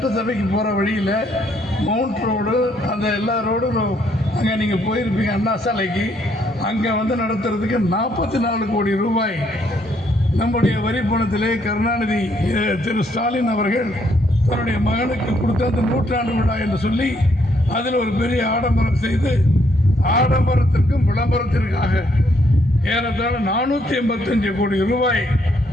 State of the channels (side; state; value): both; normal; correlation 0.71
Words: போகிற வழியில் மவுண்ட் ரோடு அந்த எல்லா ரோடும் அங்கே நீங்கள் போயிருப்பீங்க அண்ணா சாலைக்கு. அங்கே வந்து நடத்துறதுக்கு 44 கோடி ரூபாய் நம்முடைய வரி பணத்திலே கருணாநிதி திரு ஸ்டாலின் அவர்கள் தன்னுடைய மகனுக்கு கொடுத்த அந்த 100ஆண்டு விழா என்று சொல்லி அதில் ஒரு பெரிய ஆடம்பரம் செய்து ஆடம்பரத்திற்கும் விளம்பரத்திற்காக ஏறத்தாழ 485 கோடி ரூபாய்